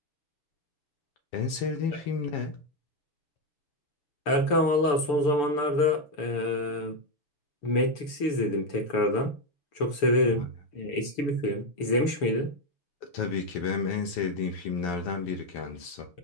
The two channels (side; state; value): right; late; 6.8 ms